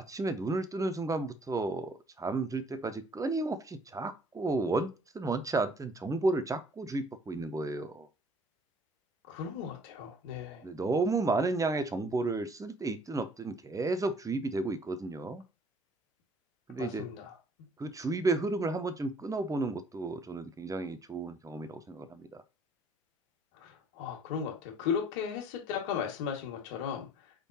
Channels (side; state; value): both; normal; correlation 0.59